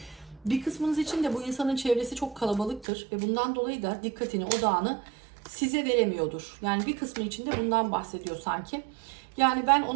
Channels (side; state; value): left; drops out; at 2.9 s